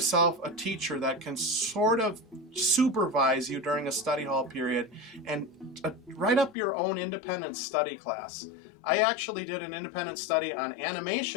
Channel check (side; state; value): right; drops out; at 6.6 s